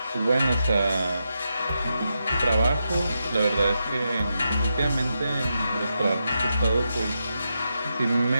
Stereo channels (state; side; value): inverted; both; correlation -0.86